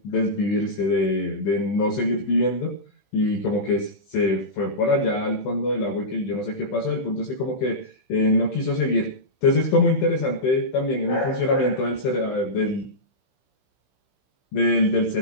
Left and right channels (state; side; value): late; right; 15 ms